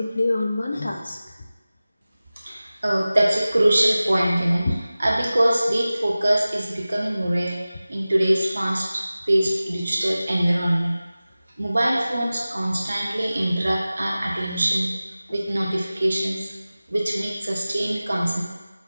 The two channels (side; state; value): both; inverted; correlation -0.97